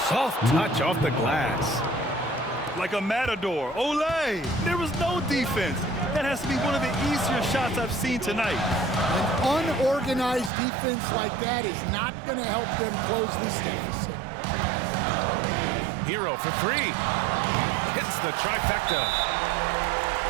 Soft touch off the glass. Like a matador. Olay! There was no defense. That has to be one of the easier shots I've seen tonight. An unorganized defense like that is not going to help them close this deficit. Hero for 3. Hits the trifecta.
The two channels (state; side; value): drops out; left; at 10.5 s